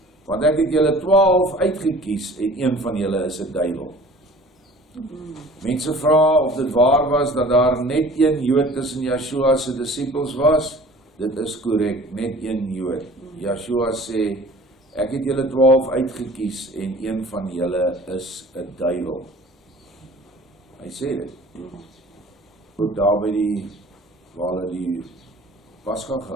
want ek het julle 12 uitgekies en een van julle is 'n duiwel. Mense vra of dit waar was dat daar net een Jood tussen JaHshua se disippels was. Dit is korrek, net een Jood. JaHshua sê, ek het julle 12 uitgekies en een van julle is 'n duiwel. Hy sê dit. Ook daar by waar hulle die Pasga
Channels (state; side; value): normal; both; correlation 0.47